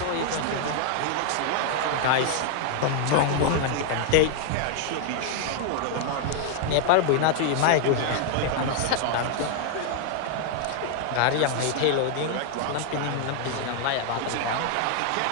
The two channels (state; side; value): different; both; correlation 0.00